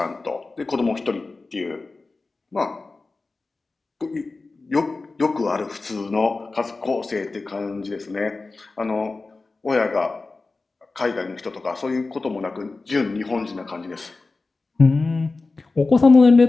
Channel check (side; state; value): right; quieter; 3.6 dB